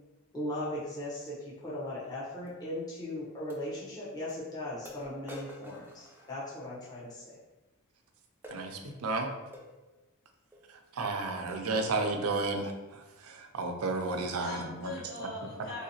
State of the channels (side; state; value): both; normal; correlation 0.07